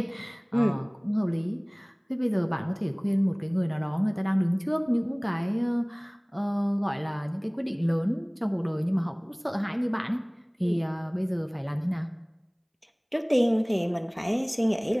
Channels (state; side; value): identical; both; correlation 1.00